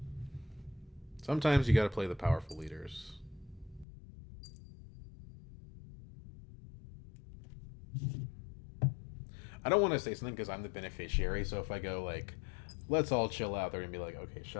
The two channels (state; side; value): drops out; right; at 3.9 s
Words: Sometimes you gotta play the powerful leaders. I don't want to say something because I'm the beneficiary, so if I go, like, let's all chill out. They're gonna be like, okay,